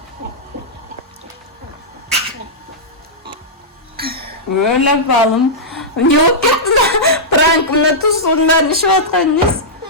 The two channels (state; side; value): normal; both; correlation -0.11